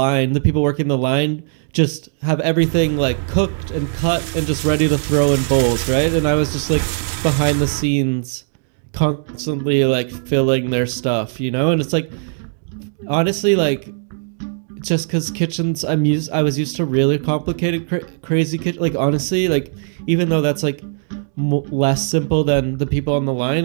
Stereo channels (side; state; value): left; silent; digital silence